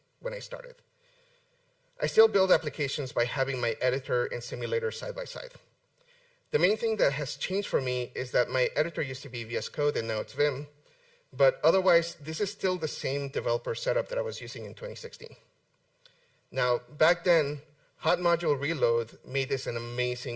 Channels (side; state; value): both; identical; correlation 1.00